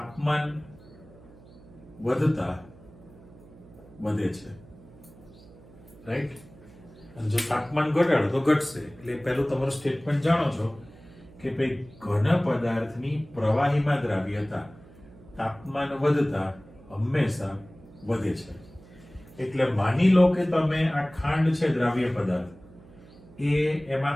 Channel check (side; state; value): right; noise; hum, 22 dB below the sound